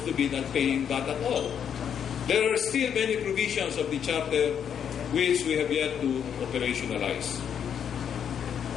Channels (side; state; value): right; quieter; 8.3 dB